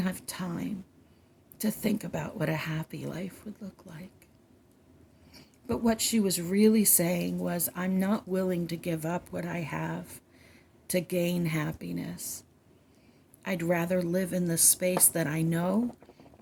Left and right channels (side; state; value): both; identical; correlation 1.00